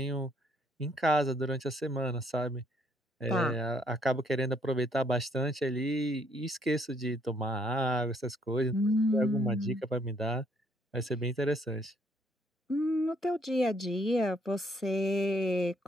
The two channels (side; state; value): both; normal; correlation 0.67